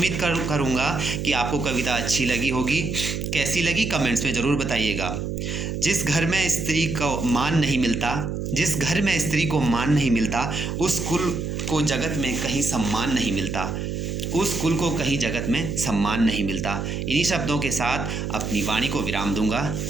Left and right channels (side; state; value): right; noise; hum, 3 dB below the sound